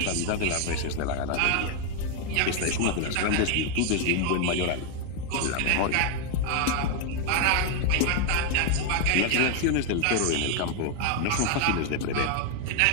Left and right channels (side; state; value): both; different; correlation 0.01